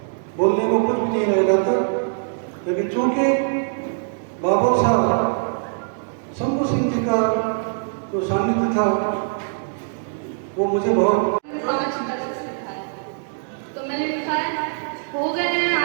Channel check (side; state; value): left; silent; digital silence